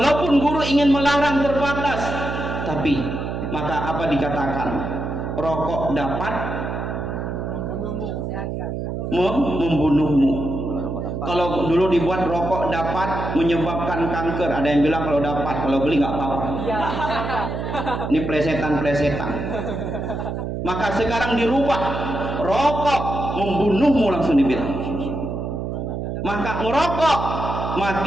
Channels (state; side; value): noise; right; hum, 4 dB below the sound